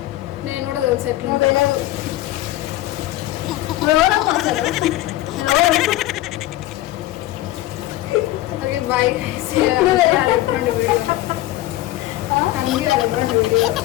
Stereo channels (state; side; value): quieter; right; 15.9 dB